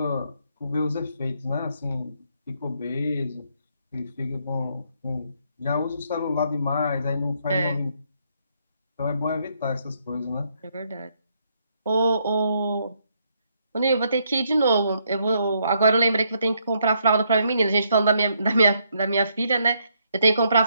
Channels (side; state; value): both; inverted; correlation -0.74